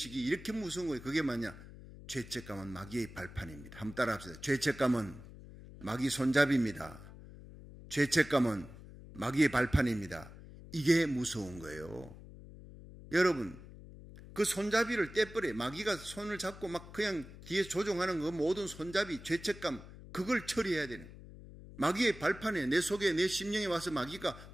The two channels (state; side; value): noise; left; hum, 16 dB below the sound